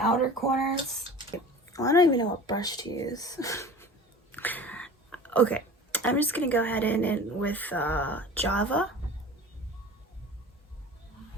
outer corners, well, I don't even know what brush to use. Okay, I'm just gonna go ahead and with Java.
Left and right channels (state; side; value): normal; both; correlation 0.39